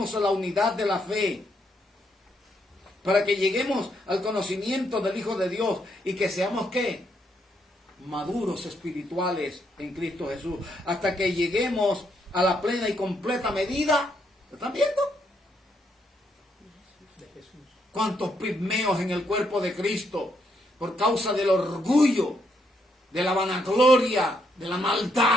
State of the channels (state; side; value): normal; both; correlation 0.75